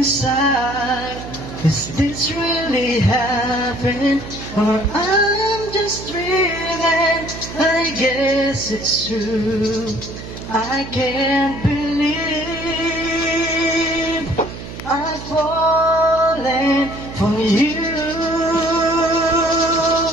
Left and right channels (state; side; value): noise; right; hum, 11 dB below the sound